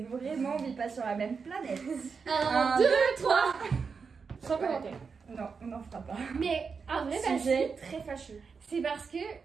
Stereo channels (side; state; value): left; quieter; 5.4 dB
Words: vraiment, on vit pas sur la même planète. 1, 2, 3. Sans commentaire. Non, on n'en fera pas. Mais en vrai, parce Sujet que très fâcheux. c'est parce que